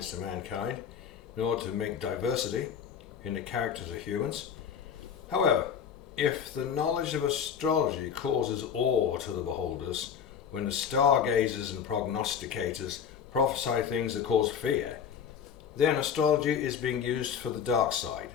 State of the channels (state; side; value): quieter; right; 7.6 dB